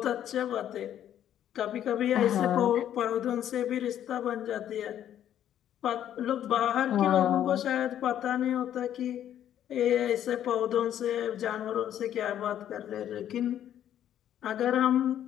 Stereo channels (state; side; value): quieter; right; 10.7 dB